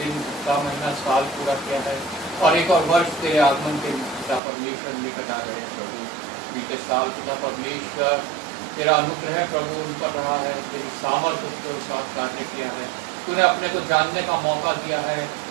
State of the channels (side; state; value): left; drops out; at 4.4 s